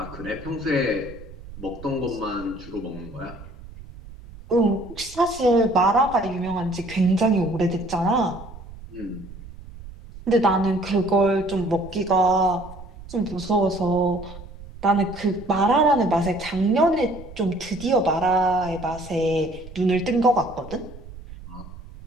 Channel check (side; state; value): right; noise; rumble, 16 dB below the sound